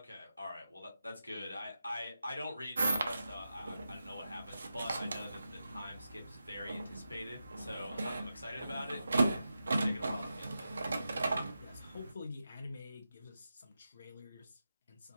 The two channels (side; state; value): both; inverted; correlation -0.90